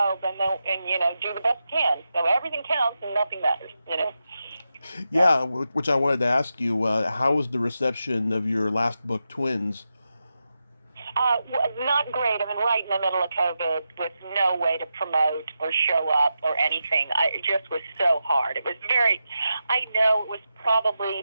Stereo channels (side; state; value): both; inverted; correlation -0.89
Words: and do the best you can. So everything counts and nothing matters. Yeah, which I wanted to ask you. How was the reception of your last book, Twins? Not great. I mean, right in the middle of COVID with no way to promote or show up or anything. It just was so hard. It was I know it was